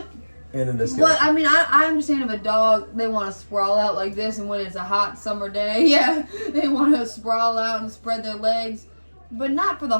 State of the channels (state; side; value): inverted; both; correlation -1.00